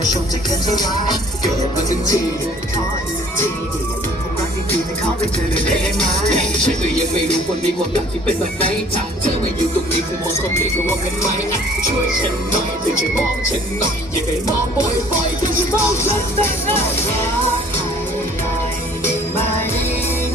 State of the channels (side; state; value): both; normal; correlation 0.53